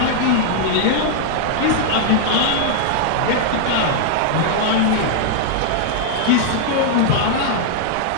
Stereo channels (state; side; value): different; both; correlation -0.01